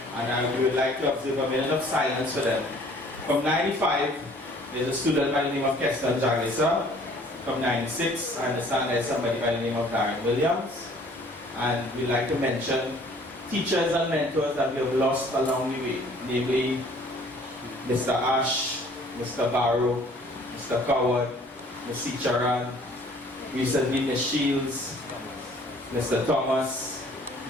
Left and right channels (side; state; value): both; normal; correlation 0.55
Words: and we would like to observe a minute of silence for them. From 95, there's a student by the name of Keston Jagisa. From 96, I understand there's somebody by the name of Darren Williams. And we'd like to mention teachers and mentors that we have lost along the way, namely Mr. Ash, Mr. Barrow, Mr. Coward, Ms. Charan, recently Ms. Shields, Mr. Thomas,